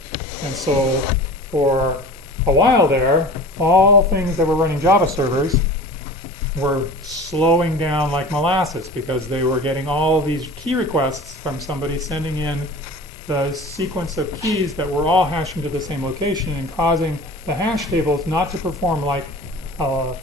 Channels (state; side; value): normal; both; correlation 0.38